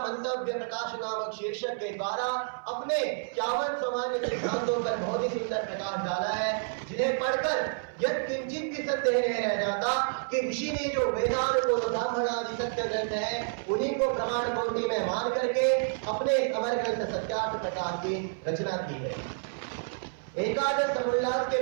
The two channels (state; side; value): silent; left; 57 dB below the other